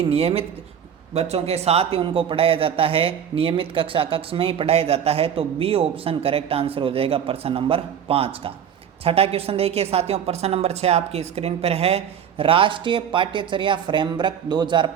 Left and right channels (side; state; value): left; quieter; 8.6 dB